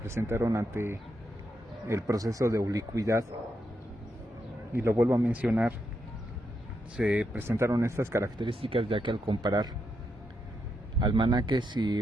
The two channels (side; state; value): both; normal; correlation 0.82